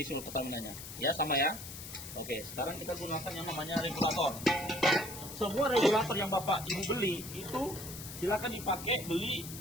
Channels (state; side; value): noise; left; hiss, 11 dB below the sound